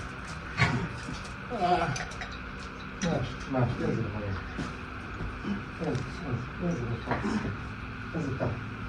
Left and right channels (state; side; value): identical; both; correlation 1.00